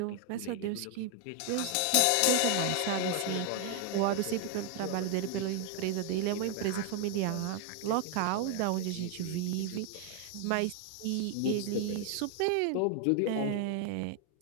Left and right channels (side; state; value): both; different; correlation 0.00